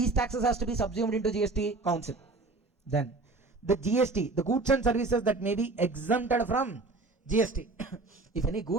taxes has to be subsumed into GST? Council. Then the GST, the goods and services that may be exempted from GST. If any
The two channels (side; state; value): left; quieter; 3.4 dB